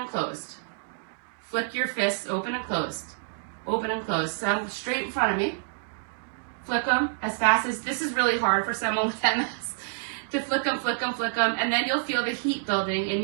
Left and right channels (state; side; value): silent; left; digital silence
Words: closed. Flick your fists open and closed, open and closed. So I'm straight in front of me. Flick them as fast as, this is really hard for someone with MS, to flick them, flick them, flick them, and then you'll feel the heat building in